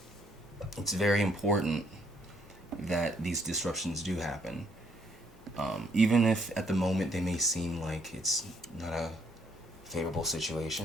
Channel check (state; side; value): normal; both; correlation 0.69